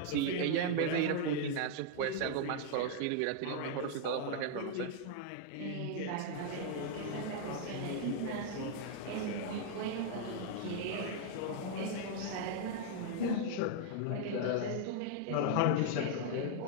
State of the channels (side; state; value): both; different; correlation 0.00